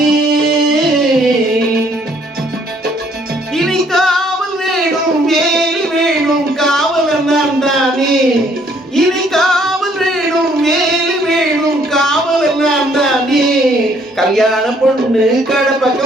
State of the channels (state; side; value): normal; both; correlation 0.64